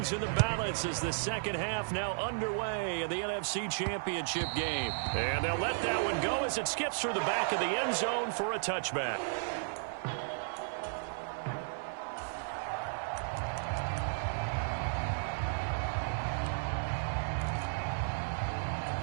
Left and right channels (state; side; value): silent; left; 55 dB below the other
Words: in the balance as the second half now underway in the NFC Championship game. And they'll let that one go as it skips through the back of the end zone for a touchback.